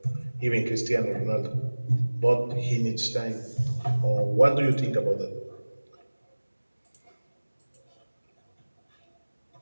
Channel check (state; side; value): inverted; both; correlation -1.00